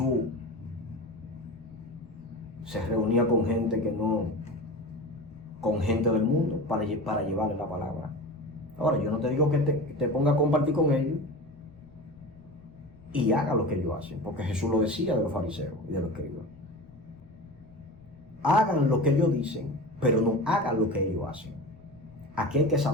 se reunía con gente que no, con gente del mundo para llevarle la palabra. Ahora, yo no te digo que te ponga a compartir con ellos y haga lo que ellos hacen, porque Jesús lo decía de los fariseos y de los escribas. Hagan lo que ellos dicen, pero no hagan lo que ellos hacen. Aquí hay que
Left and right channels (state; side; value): noise; left; rumble, 24 dB below the sound